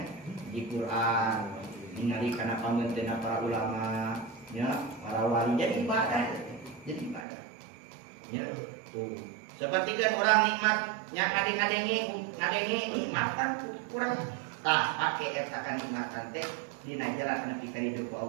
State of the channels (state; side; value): drops out; left; at 7.2 s